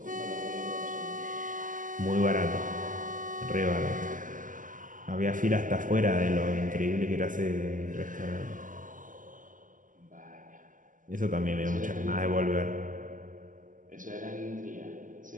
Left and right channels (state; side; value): late; left; 0.38 ms